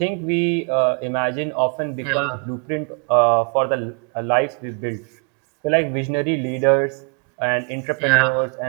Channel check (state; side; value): quieter; left; 39.0 dB